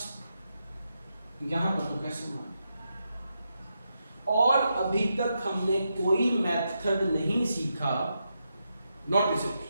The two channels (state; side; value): inverted; both; correlation -0.85